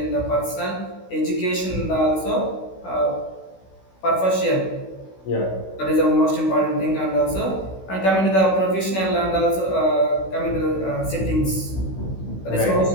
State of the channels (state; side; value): late; right; 16 ms